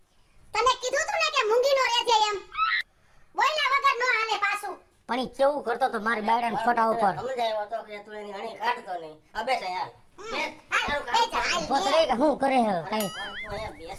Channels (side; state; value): both; identical; correlation 1.00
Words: તને કીધું તું ને કે મૂંગી નો રહેજે એમ. બોલ્યા વગર નો હાલે પાછું. પણ ઈ કેવું કરતો તો મારી બાયડાના ફોટા ઉપર. સમજાયો તો કે તું એની હણી કાઢતો નહીં. અબે છે યાર. પોતરે કે હું કરે હે કઈ